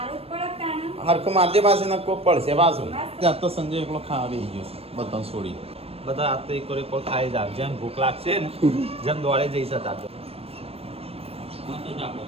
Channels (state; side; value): late; left; 0.28 ms